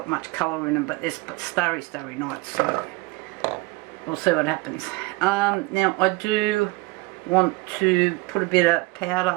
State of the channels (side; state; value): left; quieter; 23.8 dB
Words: much colour in them, but they're starry nights, so we'll see what happens. Now I do want to put a bit of